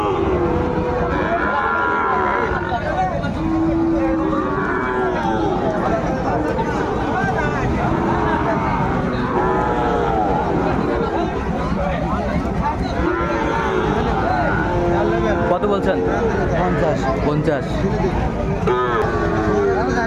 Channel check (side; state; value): both; identical; correlation 1.00